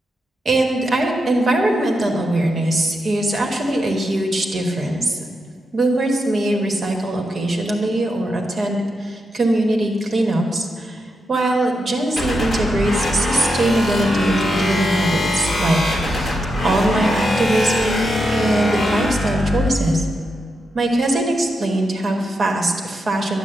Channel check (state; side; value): normal; both; correlation 0.85